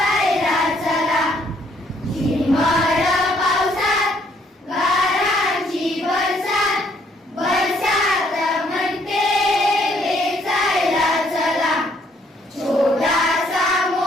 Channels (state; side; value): normal; both; correlation 0.67